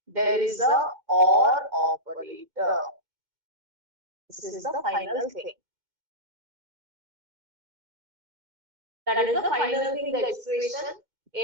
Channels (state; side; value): late; left; 2.1 ms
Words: there is a or operator. This is the final thing. That is the final thing, the expression